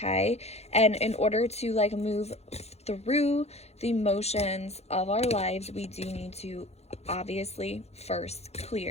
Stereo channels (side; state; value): right; late; 0.31 ms